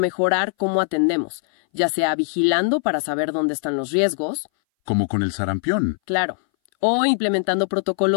cómo atendemos, ya sea vigilando para saber dónde están los riesgos. Como con el sarampión. Claro. O implementando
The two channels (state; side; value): silent; right; 61 dB below the other